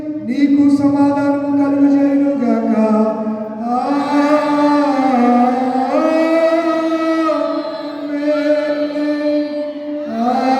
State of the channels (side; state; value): both; identical; correlation 1.00